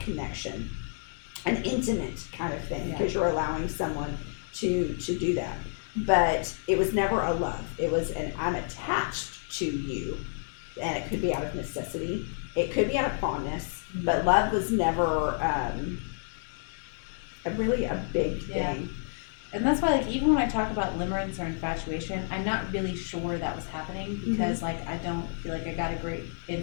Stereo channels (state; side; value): silent; right; 58 dB below the other